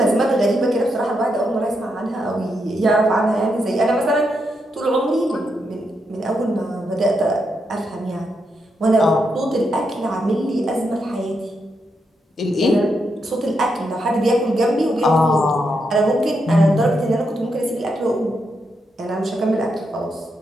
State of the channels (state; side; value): normal; both; correlation 0.82